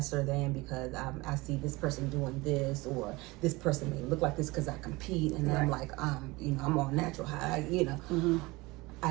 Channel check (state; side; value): quieter; left; 22.5 dB